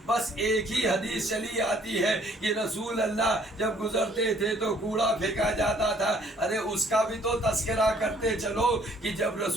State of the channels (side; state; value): both; normal; correlation 0.61